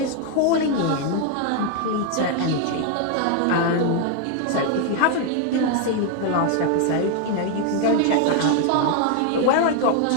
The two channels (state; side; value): different; both; correlation 0.00